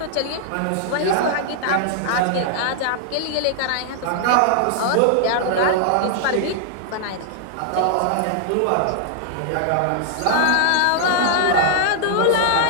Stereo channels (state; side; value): different; both; correlation -0.01